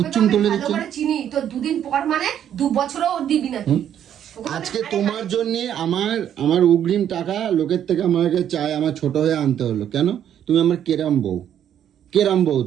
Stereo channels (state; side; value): quieter; left; 9.9 dB